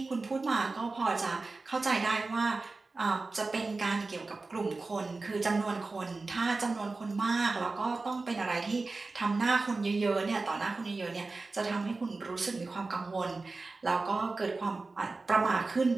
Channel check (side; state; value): left; quieter; 3.6 dB